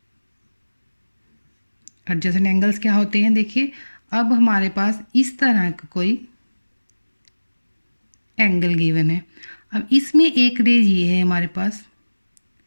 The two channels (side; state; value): both; inverted; correlation -1.00